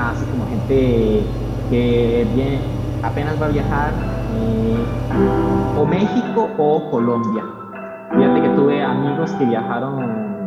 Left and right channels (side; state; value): both; identical; correlation 1.00